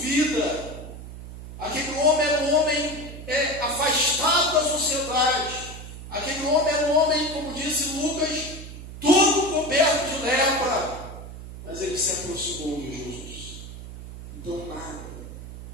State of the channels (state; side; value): noise; right; hum, 12 dB below the sound